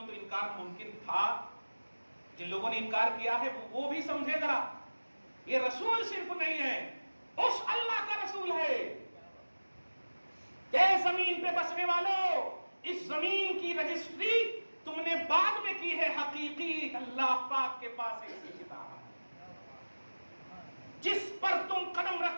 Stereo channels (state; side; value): inverted; both; correlation -1.00